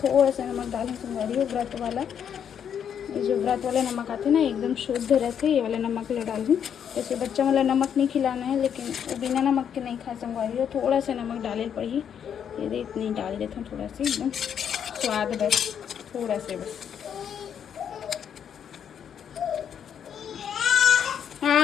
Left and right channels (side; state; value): right; quieter; 8.4 dB